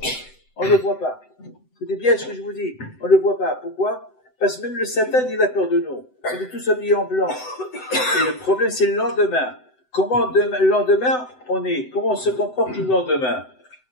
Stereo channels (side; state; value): right; late; 7.9 ms